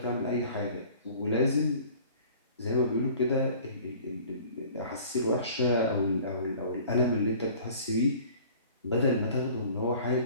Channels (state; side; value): inverted; both; correlation -0.48